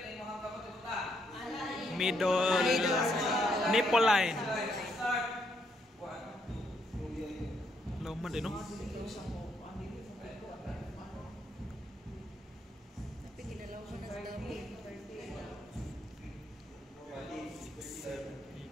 tayo mukhang kapag utang? Middle nipple line. Start. 1, 2. Laman din, no? Tapi ginalaw ko na sa dami. 8, 9,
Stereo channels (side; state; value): both; normal; correlation 0.75